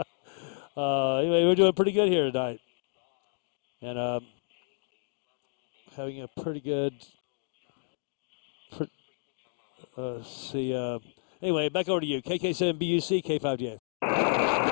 Anyway, we're doing pretty good here tonight. And having a pretty good, anyway, back over to you. KK7 BUC, K5DA.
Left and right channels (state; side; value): silent; right; digital silence